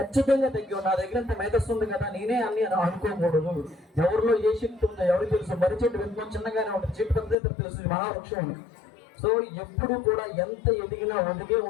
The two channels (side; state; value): right; drops out; at 7.4 s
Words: తగ్గి. నా దగ్గర ఇంత మేధస్సు ఉంది కదా, నేనే అన్ని అనుకోకూడదు. ఎవరిలో ఏ శక్తి ఉందో ఎవరికి తెలుసు. మర్రి చెట్టు వెనుకొని చిన్నగానే ఉంటుంది, చెట్టు పెద్ద తెలుసు, మహావృక్షం ఉంది. సో ఎప్పుడు కూడా ఎంత ఎదిగినా ఒదిగే